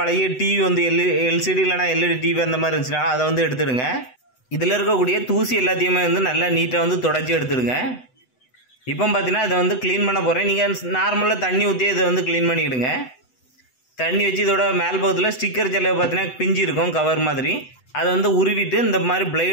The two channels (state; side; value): late; right; 8.0 ms